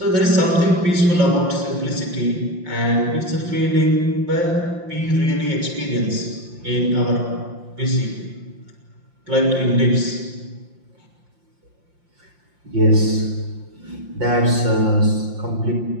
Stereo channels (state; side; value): late; left; 5.7 ms